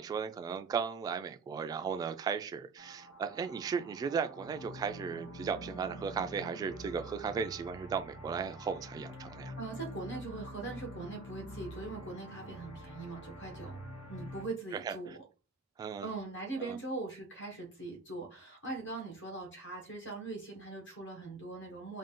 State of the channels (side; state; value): left; quieter; 4.6 dB